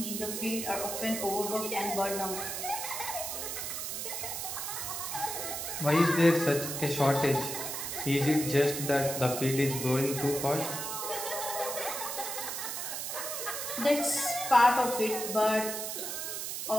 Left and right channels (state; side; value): noise; right; hiss, 4 dB below the sound